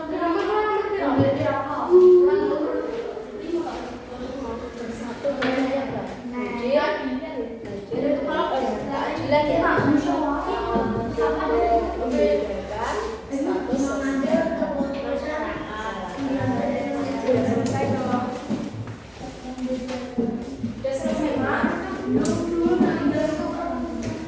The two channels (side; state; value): both; identical; correlation 1.00